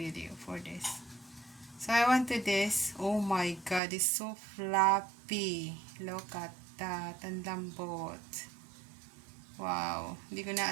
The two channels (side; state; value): left; drops out; at 3.8 s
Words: for this. So I want to this. Oh my god, it's so fluffy. Look at that. Ang lambot. Wow. Hindi ko